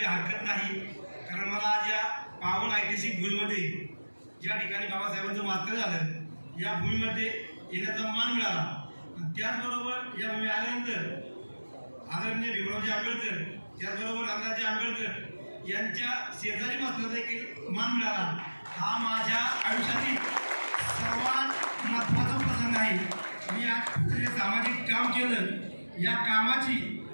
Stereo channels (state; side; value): inverted; both; correlation -1.00